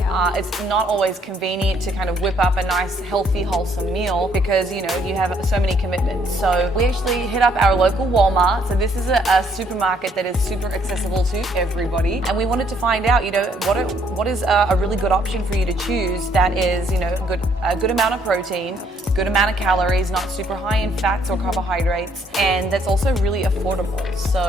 It's not always convenient to kind of whip up a nice, healthy, wholesome meal because, you know, you have so many commitments. So we actually hit up our local Walmart. So this is a supermarket that is super accessible to everybody. And we wanted to find out, you know, what is a really good option for you to choose that is, you know, a good amount of protein, good amount of calories, not super high in fats or carbohydrates, and that's also really affordable.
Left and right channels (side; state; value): both; normal; correlation 0.66